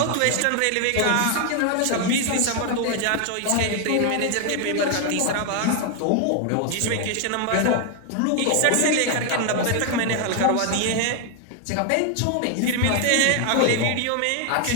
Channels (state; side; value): different; both; correlation 0.00